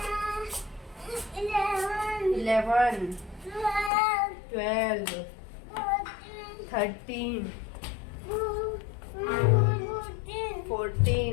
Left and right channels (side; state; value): right; drops out; at 3.9 s